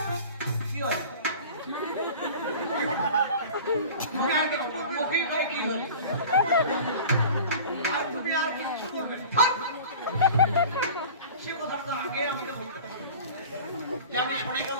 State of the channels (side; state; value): both; inverted; correlation -0.40